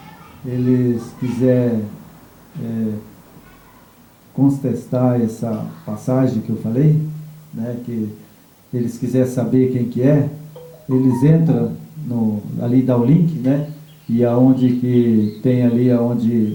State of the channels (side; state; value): both; identical; correlation 1.00